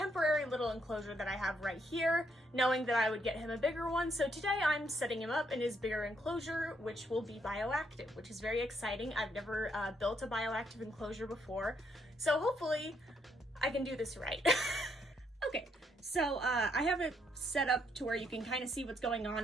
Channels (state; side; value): normal; both; correlation 0.74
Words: little enclosure that I have right here, knowing that I would get him a bigger one. So today I'm setting him up in his bigger enclosure, which will be bioactive, which is very exciting. I've never built a bioactive enclosure before. So hopefully I can do this right. Okay, so I have it set up to where you can kind of see what's going